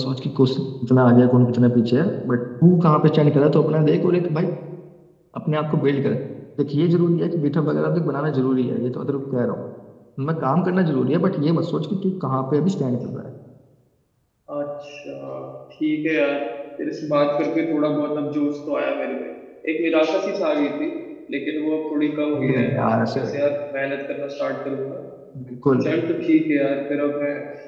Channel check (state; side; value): identical; both; correlation 1.00